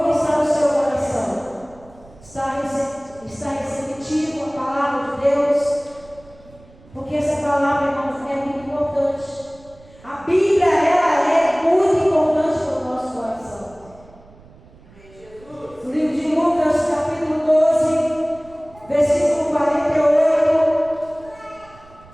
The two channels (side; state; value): right; noise; rumble, 25 dB below the sound